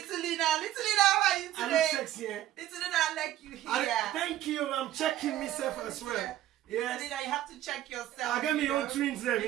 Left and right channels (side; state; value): left; quieter; 13.5 dB